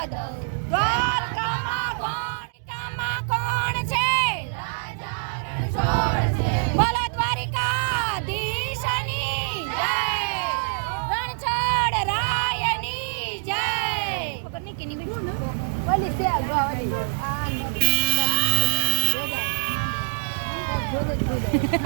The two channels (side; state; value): left; silent; digital silence